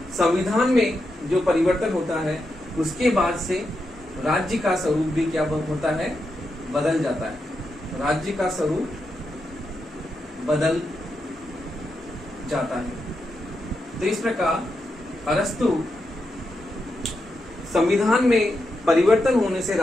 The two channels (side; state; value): both; normal; correlation 0.85